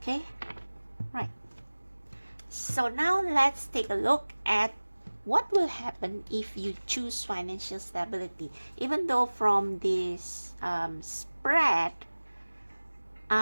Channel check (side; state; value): both; inverted; correlation -1.00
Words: right. So now let's take a look at what will happen if you choose financial stability. Even though from this spread,